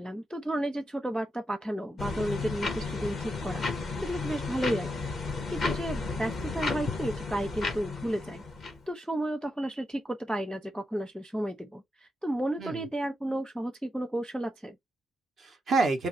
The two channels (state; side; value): normal; both; correlation 0.85